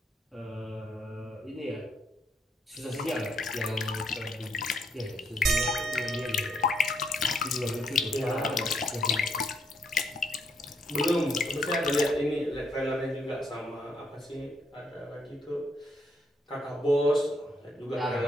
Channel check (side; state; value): both; normal; correlation 0.74